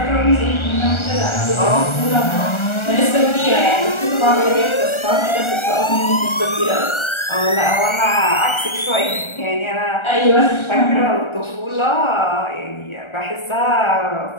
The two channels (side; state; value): right; late; 1.4 ms